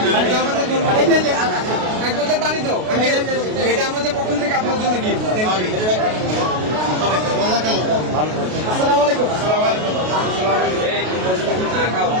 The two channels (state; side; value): late; left; 33 ms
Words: এটা আমাদের জন্য। এক বোতল পানি দাও আঙ্কেল, এটা আমাদের পক্ষ থেকে আপনার জন্য গিফট। Thank you. আসসালামু আলাইকুম।